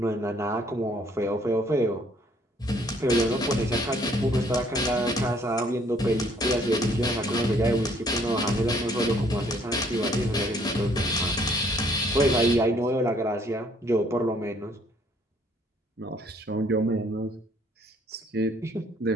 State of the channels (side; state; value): both; normal; correlation 0.63